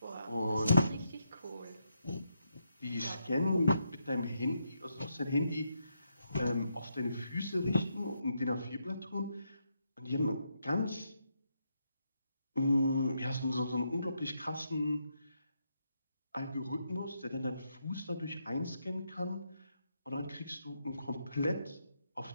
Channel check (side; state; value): both; inverted; correlation -0.81